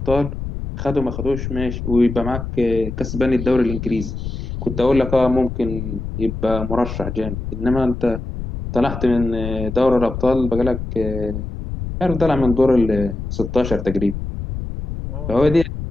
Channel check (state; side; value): noise; left; rumble, 6 dB below the sound